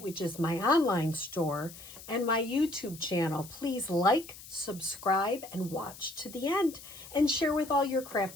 which is my online store, and my YouTube channel. Please like, subscribe, and watch to the end, and share with all your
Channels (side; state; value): left; noise; hiss, 16 dB below the sound